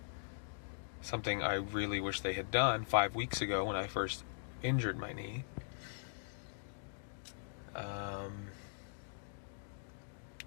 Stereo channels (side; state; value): right; silent; digital silence